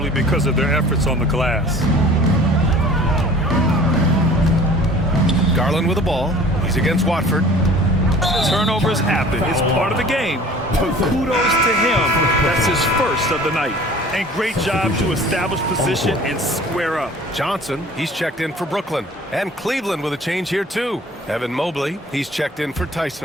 because of their efforts on the glass. Garland with the ball. He's against Watford. Turnovers happen. It's part of the game. But kudos to him. That's his first of the night. And great job to establish position and square up. Johnson, he's checked in for Brooklyn. And Cleveland with a change here, too. Evan Mobley, he's checked in for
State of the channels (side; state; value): both; normal; correlation 0.47